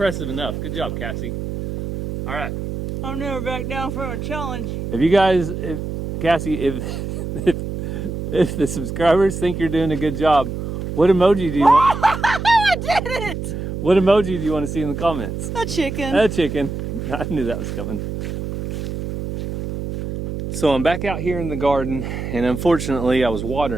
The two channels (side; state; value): right; noise; hum, 5 dB below the sound